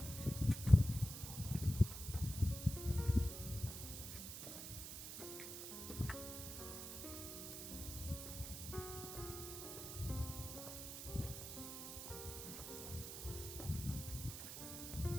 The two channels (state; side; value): noise; right; hiss, 7 dB below the sound